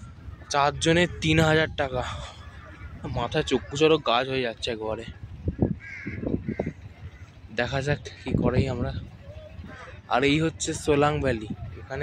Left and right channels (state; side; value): identical; both; correlation 1.00